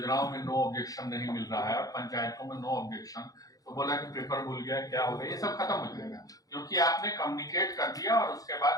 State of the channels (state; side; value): late; right; 0.17 ms